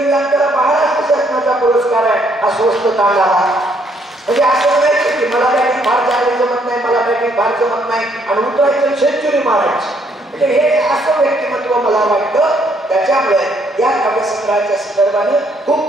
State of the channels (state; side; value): normal; both; correlation 0.69